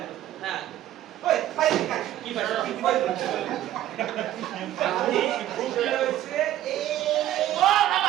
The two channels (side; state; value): left; quieter; 13.0 dB